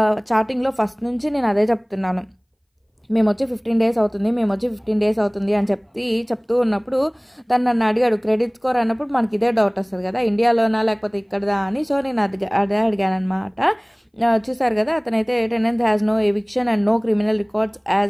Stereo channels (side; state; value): both; identical; correlation 1.00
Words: చాటింగ్లో ఫస్ట్ నుంచి నేను అదే చెప్తున్నాను, మేము వచ్చి 15 days అవుతుంది అని చెప్తూ ఉన్నప్పుడు తను నన్ను అడిగాడు క్రెడిట్ స్కోర్ అన్నప్పుడు మనకి ఇదే డౌట్ వస్తుంది కదా, ఇండియాలోనా లేకపోతే ఇక్కడదా అని. సో నేను అదే అడిగాను అనమాట. చూసారు కదా, అతనైతే tenant has no eviction and no criminal records